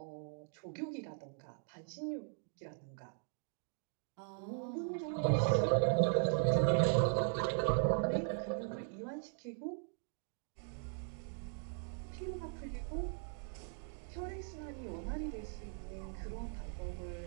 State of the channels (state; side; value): silent; left; 52 dB below the other